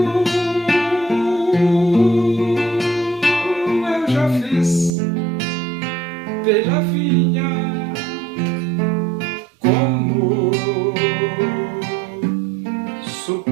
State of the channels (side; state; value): left; drops out; at 4.9 s